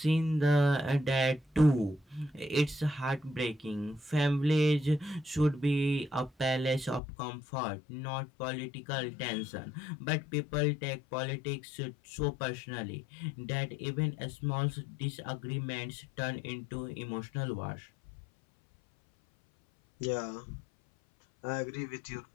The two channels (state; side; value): drops out; right; at 7.0 s